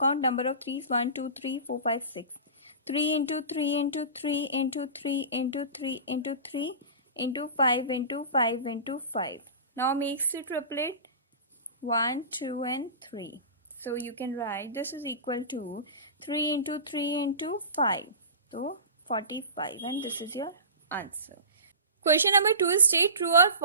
number of 3's 1 2 3 4 5 6. 3 into 3 into 3 into 3 into 3 into 3 into 5 into 5 into 5. Now makes the triplet 1, 2, and 3. So you can write this is equal to 3 into 3 into 5. So 45, and this is your answer. Question number 2 is state true or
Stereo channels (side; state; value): both; inverted; correlation -0.32